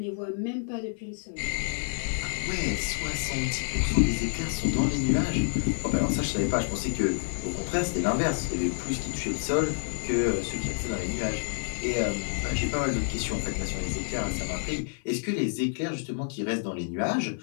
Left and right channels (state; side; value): silent; right; 59 dB below the other